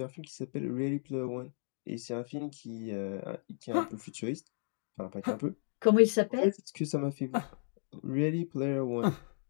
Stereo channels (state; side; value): silent; right; digital silence